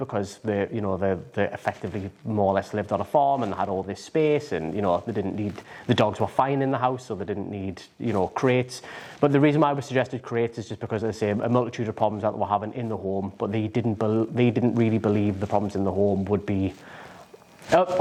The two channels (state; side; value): identical; both; correlation 1.00